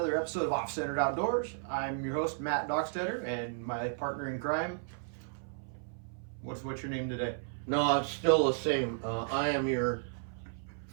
episode of OffCentered Outdoors. I'm your host, Matt Dockstetter, and my partner in crime. What's your name today? No, it's still the same. I am your.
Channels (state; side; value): silent; left; 55 dB below the other